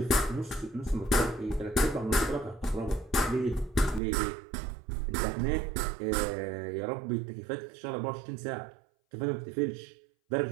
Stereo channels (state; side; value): drops out; left; at 4.0 s